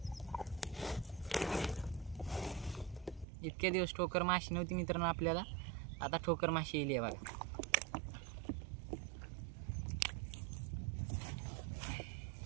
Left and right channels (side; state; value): left; drops out; at 3.2 s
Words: इतके दिवस ठोकर माशी नव्हती मित्रांनो आपल्याला आता ठोकर माशी येईल बघा